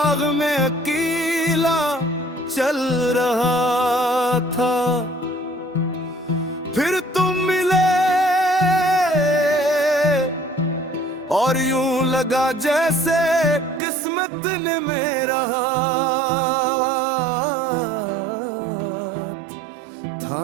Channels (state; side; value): drops out; left; at 13.8 s